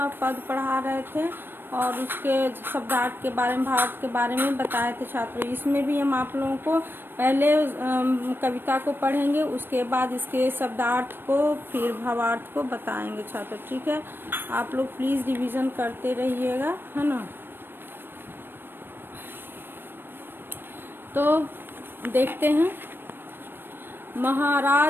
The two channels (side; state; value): left; late; 0.098 ms